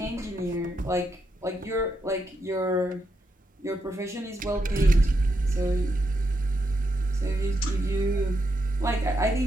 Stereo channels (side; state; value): both; normal; correlation 0.82